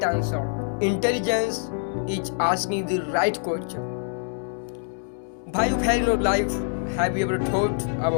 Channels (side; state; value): right; silent; 62 dB below the other